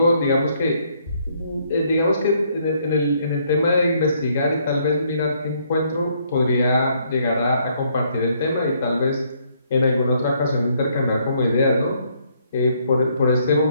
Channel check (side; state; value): both; inverted; correlation -0.69